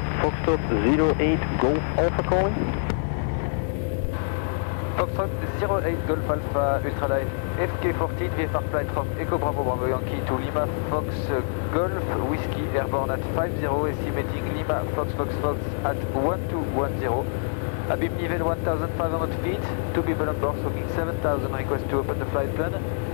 Foxtrot 08 Golf Alpha calling. Foxtrot 08 Golf Alpha Ultralight FK14 VFR flight from Echo Bravo Bravo Yankee to Lima Fox Golf Whiskey airborne at 50, estimating Lima Fox Fox Fox at 1210. Abim level 1500 feet, 2 people on board, smoking 7000, request to open the flight plan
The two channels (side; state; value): right; silent; digital silence